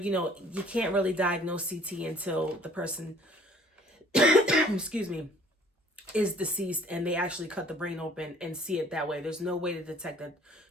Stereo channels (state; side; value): normal; both; correlation 0.55